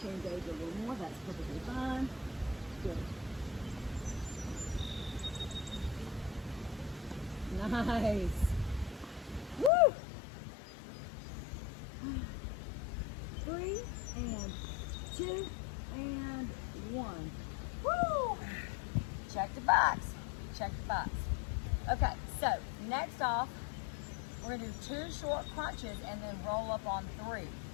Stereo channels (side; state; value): right; drops out; at 9.7 s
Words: to engage a little more, that's perfectly fine. Good. Nice. Woo! 3 and 2 and 1. Woo! Check the box. Check the box. Okay, so next off, we're going to do 2 short crunches and then roll up on 3